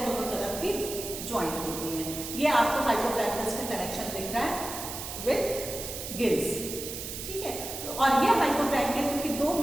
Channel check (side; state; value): right; noise; hiss, 7 dB below the sound